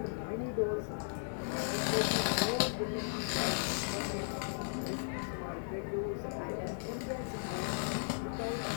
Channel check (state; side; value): silent; right; digital silence